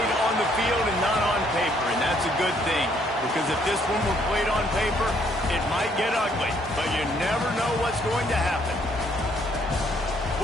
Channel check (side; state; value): both; normal; correlation 0.67